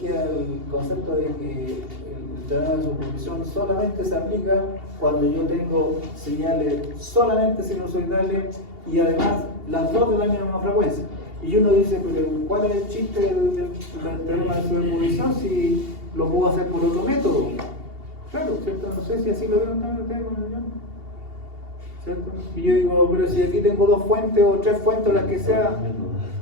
el concepto de que el teorema de superposición solamente se aplica cuando yo tengo señales solamente sinusoidales y además las dos de la misma frecuencia. Y uno dice, pero ¿cuál es el chiste del teorema de superposición si lo puedo hacer por otro método? Claro, ¿cierto? No sé si así lo vieron también ustedes con el guión, ¿cierto? Y yo digo, pero si aquí tengo 2 fuentes o 3 fuentes, las que sea,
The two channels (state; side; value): late; left; 2.8 ms